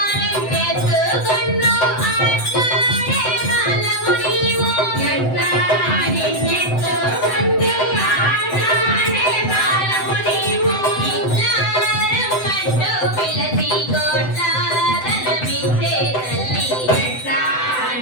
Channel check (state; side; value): late; right; 7.8 ms